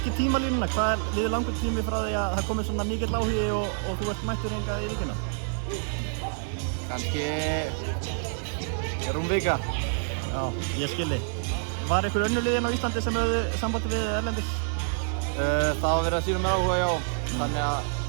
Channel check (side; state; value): left; silent; digital silence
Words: tímalínuna. Hvað liður langur tími frá því að það komið svona mikill áhugi og þú ert mættur hingað í Víkina? Kannski rúm vika. Já, ég skilji. Var einhver önnur lið á Íslandi sem höfðu sambandi við erlendis? Það var verið að sýna mér áhuga, já. Þannig að